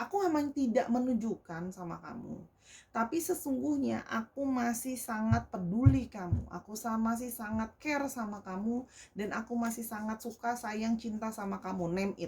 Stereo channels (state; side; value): identical; both; correlation 1.00